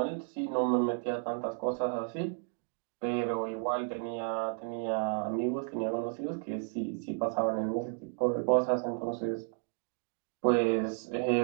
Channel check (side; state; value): left; silent; 56 dB below the other